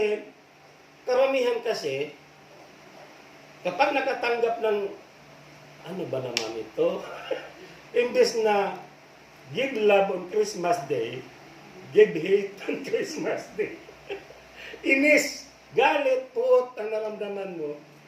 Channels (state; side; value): identical; both; correlation 1.00